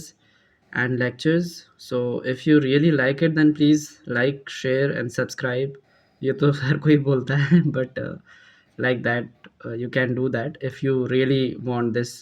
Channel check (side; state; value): both; identical; correlation 1.00